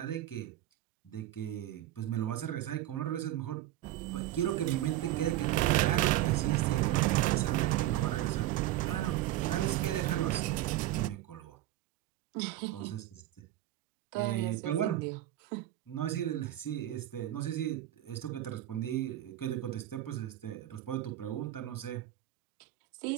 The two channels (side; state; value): left; quieter; 14.3 dB